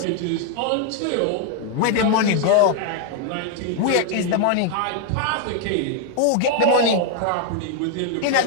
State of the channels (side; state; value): both; different; correlation 0.00